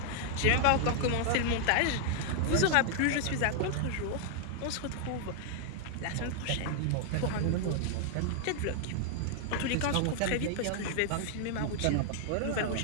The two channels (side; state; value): both; different; correlation 0.00